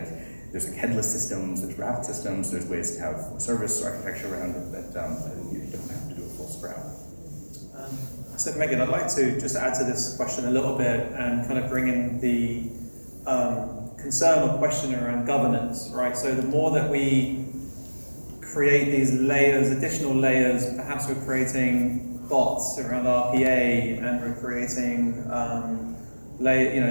There's like headless systems, there's wrapped systems, there's ways to have service architecture around it that you don't have to do a full scrap. So Megan, I'd like to just add to this question a little bit and kind of bring in the concern or question around governance, right? So the more that we create these layers, additional layers, perhaps we're creating bots around RPA and we're creating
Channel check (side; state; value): both; inverted; correlation -1.00